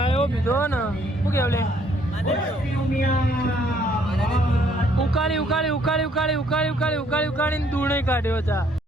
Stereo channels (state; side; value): normal; both; correlation 0.65